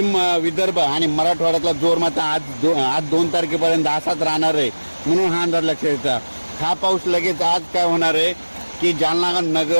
विदर्भ आणि मराठवाड्यातला जोर मात्र आज 2 तारखेपर्यंत असाच राहणार आहे, म्हणून हा अंदाज लक्षात येतात। हा पाऊस लगेच आज काय होणार आहे की जालना,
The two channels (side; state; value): both; inverted; correlation -1.00